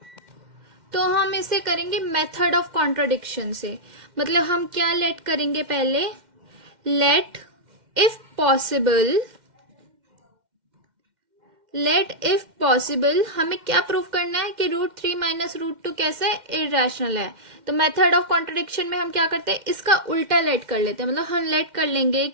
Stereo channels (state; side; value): late; left; 2.1 ms